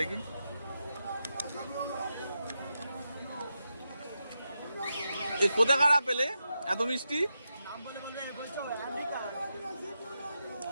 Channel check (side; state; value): both; inverted; correlation -0.87